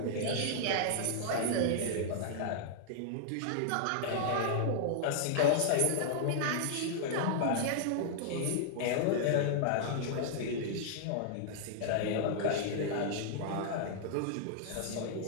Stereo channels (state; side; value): different; both; correlation -0.01